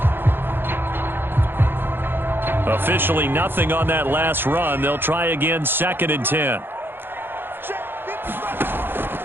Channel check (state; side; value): late; left; 0.10 ms